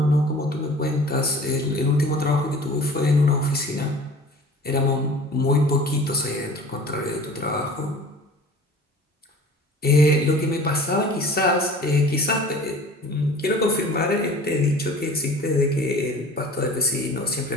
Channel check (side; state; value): both; normal; correlation 0.44